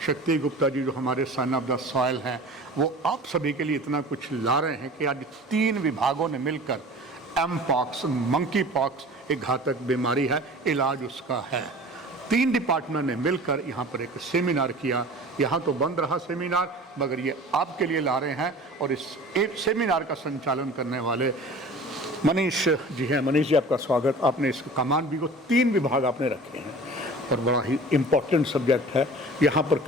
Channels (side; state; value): both; normal; correlation 0.41